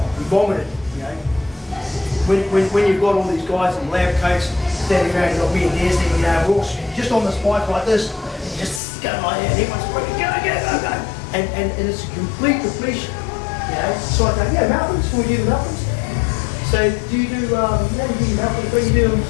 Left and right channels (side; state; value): right; drops out; at 8.8 s